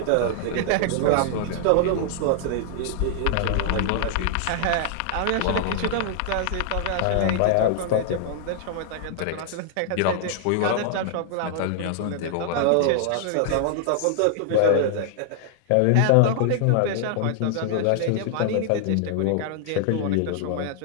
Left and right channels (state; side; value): different; both; correlation -0.01